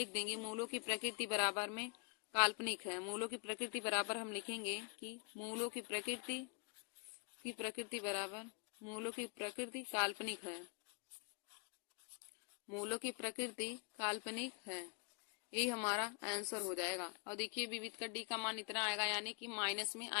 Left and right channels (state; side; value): quieter; right; 37.0 dB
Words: देंगे मूलों की प्रकृति बराबर में काल्पनिक है। मूलों की प्रकृति बराबर हम लिखेंगे कि मूलों की प्रकृति बराबर मूलों की प्रकृति काल्पनिक है। मूलों की प्रकृति काल्पनिक है, यही हमारा आंसर हो जाएगा। और देखिए विविध का डी का मान इतना आएगा, यानी कि माइनस में